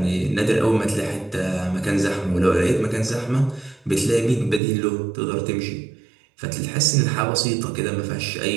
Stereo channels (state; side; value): drops out; left; at 4.6 s